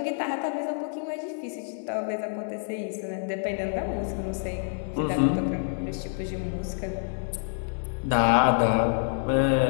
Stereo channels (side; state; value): right; silent; digital silence